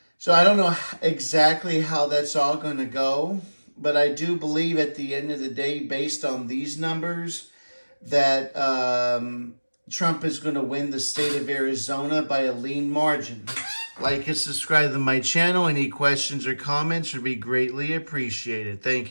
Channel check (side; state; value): both; inverted; correlation -1.00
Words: So I don't know exactly how that's all going to go. But I do believe at the end of the day, based on these numbers, that Trump is going to win the state of Arizona by a lean margin. Like and subscribe to my channel. Any questions or comments would be greatly appreciated.